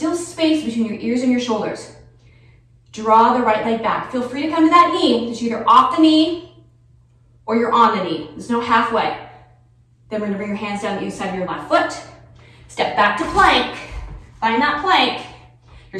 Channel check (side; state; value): both; identical; correlation 1.00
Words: space between your ears and your shoulders. Draw the right leg back. Feel free to come to that knee. It's either off the knee or you're on the knee. There's no halfway. Then we're gonna bring your hands down the other side of your left foot. Step back to plank. Find that plank.